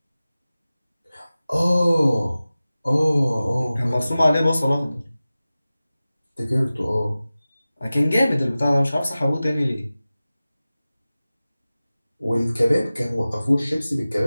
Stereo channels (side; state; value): both; inverted; correlation -0.97